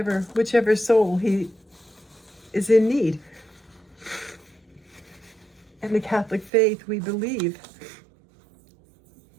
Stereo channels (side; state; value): left; drops out; at 6.5 s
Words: soul he is in need. In the Catholic faith, we believe